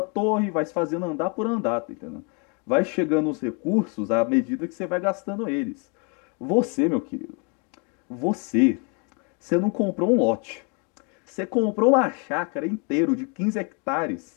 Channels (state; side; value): quieter; right; 35.3 dB